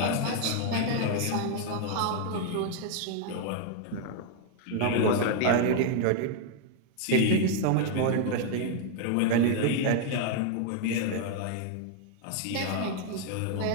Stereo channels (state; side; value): different; both; correlation 0.00